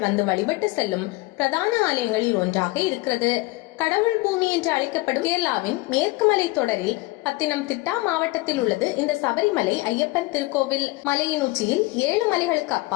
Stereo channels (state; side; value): quieter; right; 21.7 dB